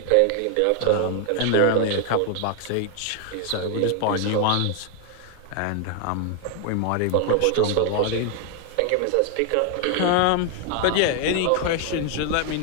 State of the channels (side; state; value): both; different; correlation 0.00